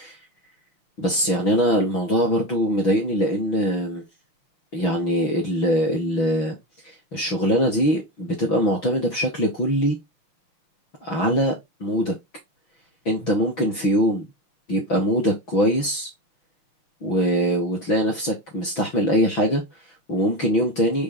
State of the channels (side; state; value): right; late; 6.1 ms